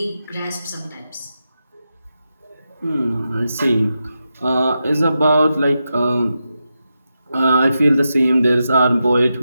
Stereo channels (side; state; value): both; inverted; correlation -0.88